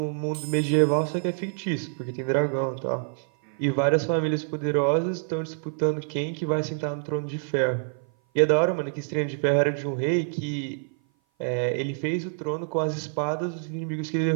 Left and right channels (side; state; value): left; silent; 56 dB below the other